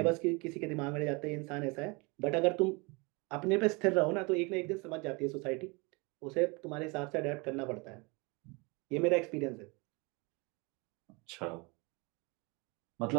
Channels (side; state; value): left; quieter; 28.4 dB